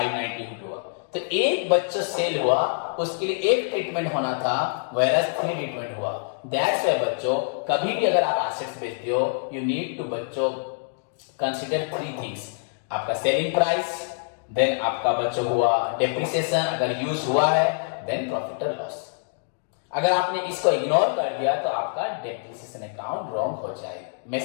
हुआ। तो एक बच्चों सेल हुआ उसके लिए एक ट्रीटमेंट होना था, वेरस 3 ट्रीटमेंट हुआ। दैट्स व्हाई बच्चों कभी भी अगर आप एसेट्स बेचते हो, यू नीड टू बच्चों कंसीडर 3 थिंग्स, आपका सेलिंग प्राइस, देन आपका बच्चों हुआ डेप्रिसिएशन अगर यूज हुआ है, देन प्रॉफिट और लॉस। अगर आपने इसको इग्नोर कर दिया तो आपका डेप्रिसिएशन अकाउंट रॉन्ग हो जाएगा,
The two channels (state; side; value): silent; right; digital silence